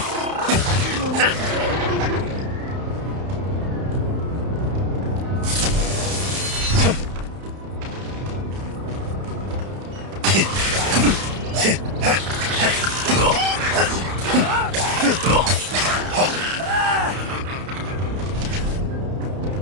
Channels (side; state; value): left; late; 31 ms